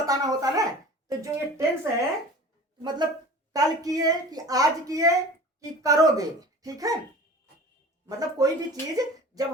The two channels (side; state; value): both; normal; correlation 0.40